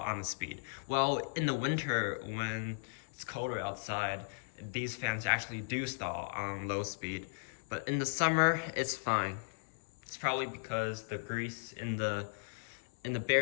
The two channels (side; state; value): right; silent; 53 dB below the other